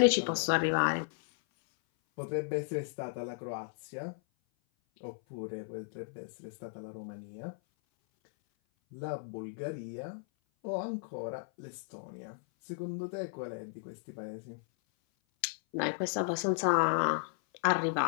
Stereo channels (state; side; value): silent; right; 55 dB below the other